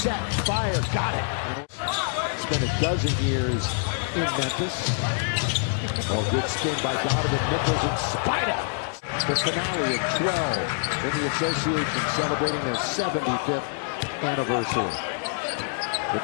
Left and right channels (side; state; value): right; silent; digital silence